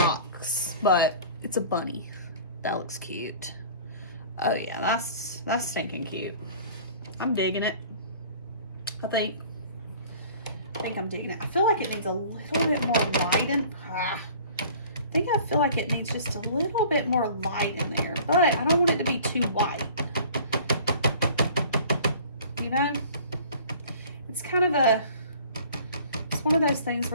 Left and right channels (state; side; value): inverted; both; correlation -0.47